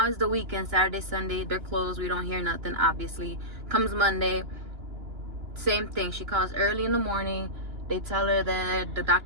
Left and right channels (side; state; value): left; late; 2.9 ms